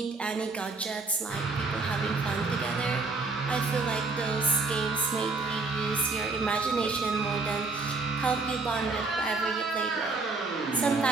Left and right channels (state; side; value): quieter; left; 3.8 dB